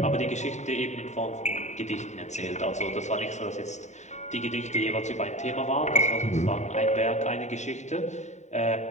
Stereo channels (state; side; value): late; right; 0.34 ms